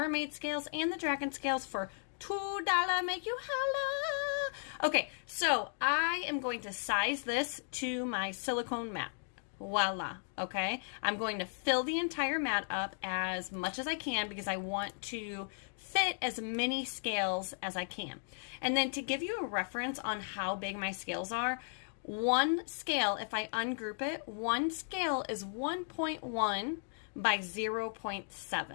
scales and the dragon scales for $2. Make you holla. Okay, so I am going to size this to my silicone mat. Voila. Okay, I'm going to fill the entire mat up as much as I can because I want to fit as many scales as I can. And then to give you a reference on how big my scales are, one scale, if I ungroup it, one scale is 1.1 by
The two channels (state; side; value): silent; right; digital silence